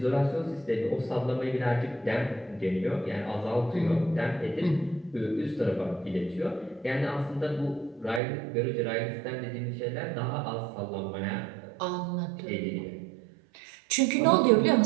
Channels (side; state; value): left; drops out; at 8.2 s